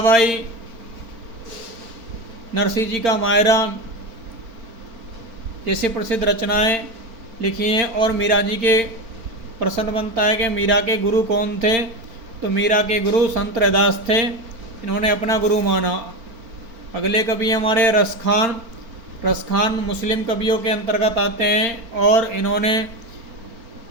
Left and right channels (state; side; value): late; left; 4.4 ms